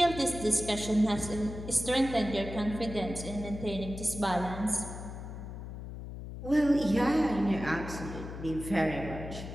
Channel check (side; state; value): left; noise; hum, 9 dB below the sound